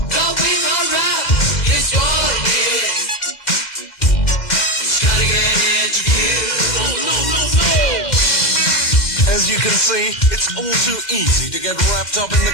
As you can see, it's all too easy to get wrapped up in the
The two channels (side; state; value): right; late; 2.0 ms